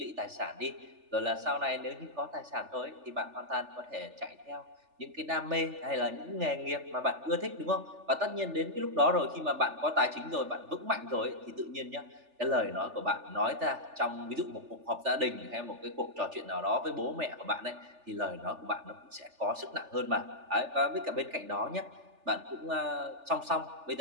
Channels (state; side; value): late; left; 3.4 ms